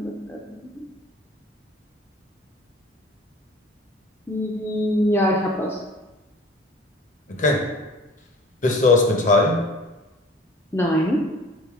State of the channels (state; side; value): normal; both; correlation 0.46